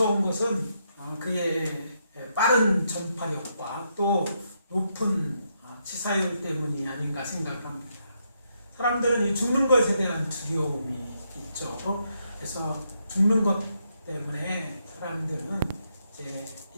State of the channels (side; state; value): both; inverted; correlation -0.78